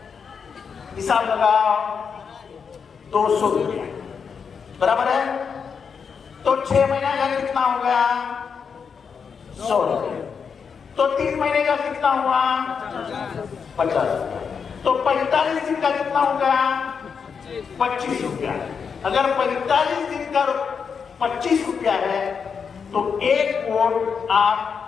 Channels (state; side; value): quieter; right; 6.2 dB